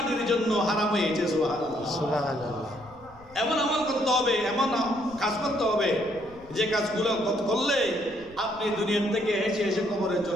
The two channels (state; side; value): noise; left; rumble, 23 dB below the sound